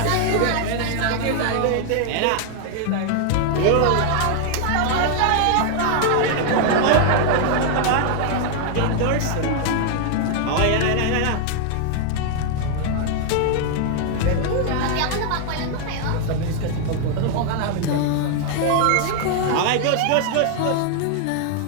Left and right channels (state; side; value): different; both; correlation 0.00